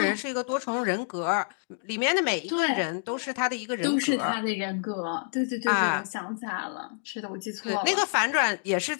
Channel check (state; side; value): silent; right; digital silence